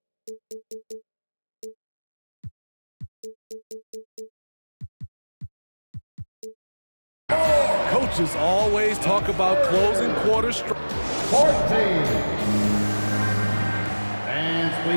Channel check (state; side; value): inverted; both; correlation -1.00